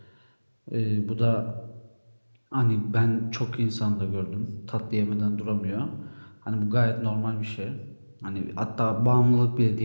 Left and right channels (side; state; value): both; inverted; correlation -1.00